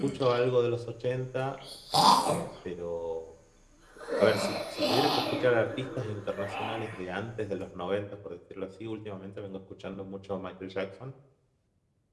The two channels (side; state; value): both; identical; correlation 1.00